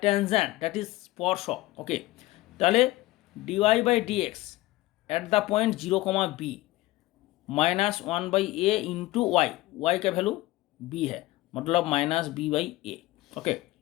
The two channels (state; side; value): quieter; right; 18.6 dB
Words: tangent, that is स्पर्शक। ओके, ताहले dy/dx at the point 0, b minus 1/a into y का वैल्यू b है, मतलब माइनस b/a। ओके,